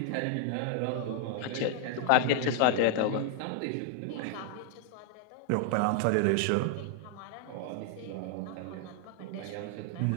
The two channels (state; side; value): different; both; correlation 0.00